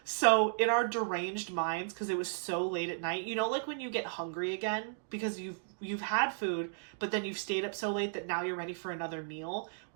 So in our deranged minds, because it was so late at night, when you get hungry again because you've had food, but then you've stayed up so late that now you're ready for another meal.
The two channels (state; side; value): silent; left; digital silence